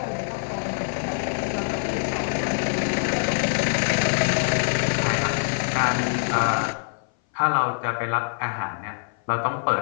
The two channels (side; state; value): right; silent; 58 dB below the other